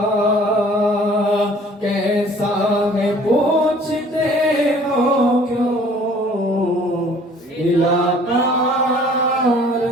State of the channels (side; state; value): both; normal; correlation 0.53